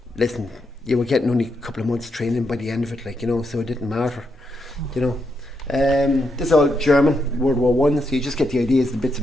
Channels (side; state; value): both; normal; correlation 0.81